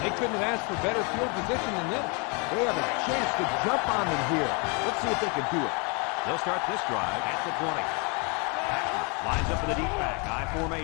They couldn't have asked for better field position than this. They have a chance to jump on them here. Let's see if they can do it. They'll start this drive at the 20. Lines up in the deep back, I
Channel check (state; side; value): quieter; right; 33.1 dB